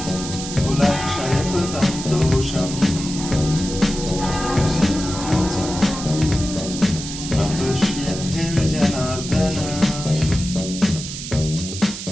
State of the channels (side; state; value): right; noise; hiss, 8 dB below the sound